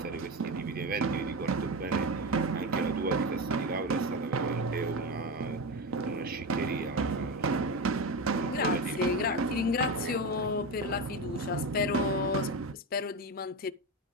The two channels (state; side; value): normal; both; correlation 0.18